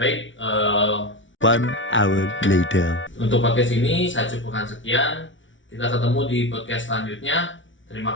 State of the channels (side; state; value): right; late; 0.56 ms